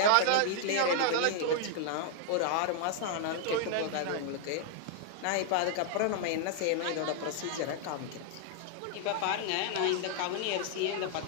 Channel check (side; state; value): both; different; correlation 0.00